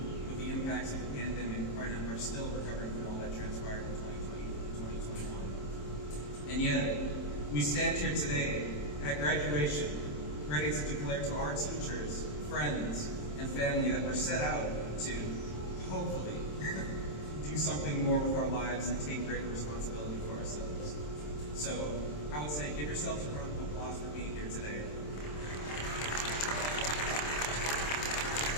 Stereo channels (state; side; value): late; right; 27 ms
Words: with the impacts of the pandemic and are still recovering from all that transpired in 2020 and 2021. And yet, we stand here today at graduation, ready to declare to our teachers, friends, and family that we're set out to, hopefully, do something more with our lives and take greater responsibility for ourselves. So, I would say give yourselves a round of applause for being here today.